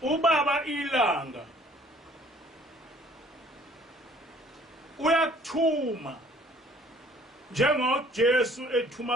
ubaba ilanga uyakuthuma njengoJesu ethuma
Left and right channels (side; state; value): both; normal; correlation 0.56